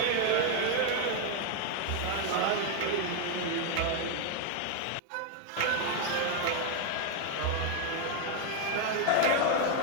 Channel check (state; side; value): different; both; correlation 0.01